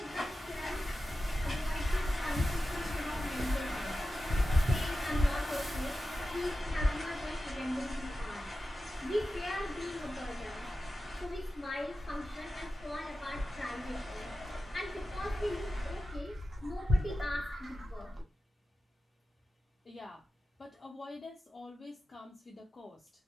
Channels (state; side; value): normal; both; correlation 0.93